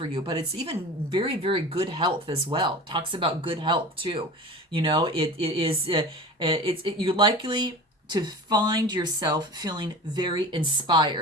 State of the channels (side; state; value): both; normal; correlation 0.35